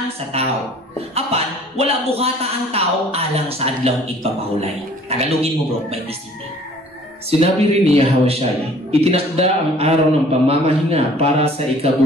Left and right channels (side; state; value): both; normal; correlation 0.53